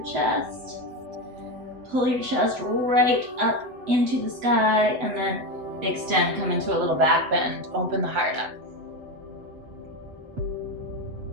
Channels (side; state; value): left; late; 7.9 ms